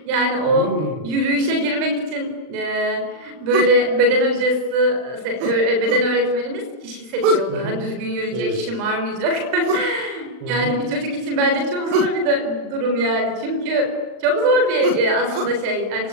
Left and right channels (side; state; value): left; late; 39 ms